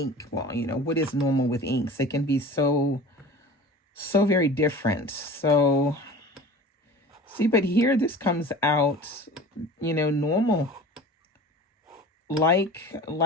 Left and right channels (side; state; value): both; normal; correlation 0.39